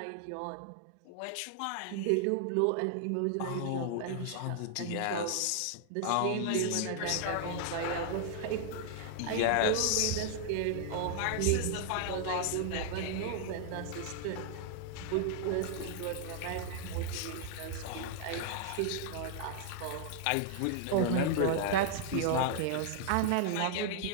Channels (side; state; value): both; different; correlation -0.01